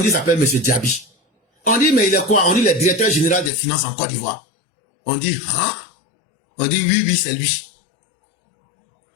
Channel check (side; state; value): right; drops out; at 3.5 s